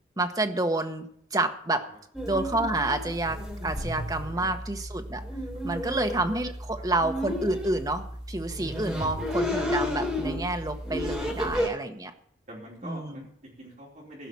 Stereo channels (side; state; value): both; normal; correlation 0.50